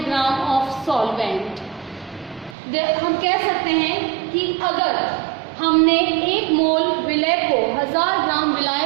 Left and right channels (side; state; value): left; drops out; at 2.6 s